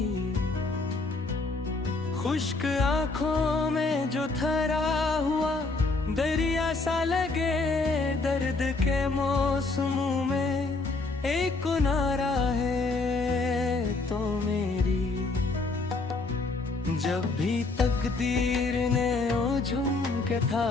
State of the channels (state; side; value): quieter; right; 3.6 dB